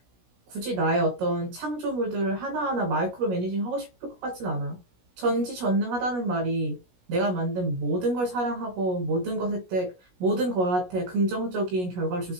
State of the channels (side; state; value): left; late; 16 ms